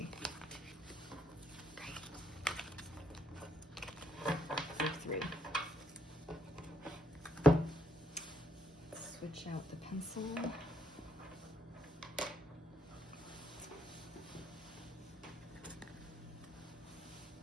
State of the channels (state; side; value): normal; both; correlation 0.72